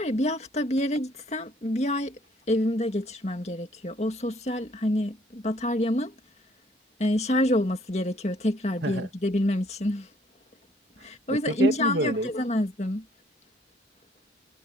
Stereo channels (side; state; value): both; normal; correlation 0.63